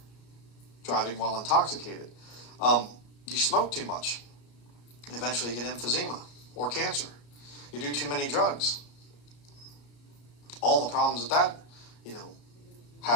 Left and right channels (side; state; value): right; late; 33 ms